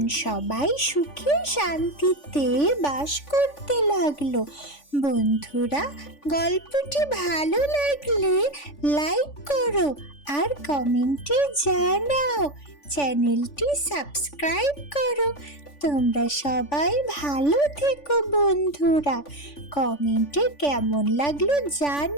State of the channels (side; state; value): right; late; 3.5 ms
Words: সবাই সুখে শান্তিতে বাস করতে লাগলো। বন্ধুরা, গল্পটি ভালো লাগলে লাইক করো আর কমেন্টে জানাও, চ্যানেলটি সাবস্ক্রাইব করো। তোমরা সবাই ভালো থেকো বন্ধুরা, কমেন্টে কেমন লাগলো